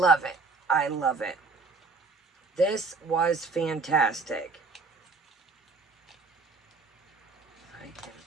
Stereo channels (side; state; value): left; quieter; 4.1 dB